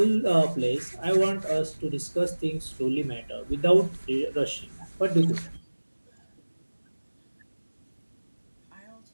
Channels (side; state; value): both; inverted; correlation -1.00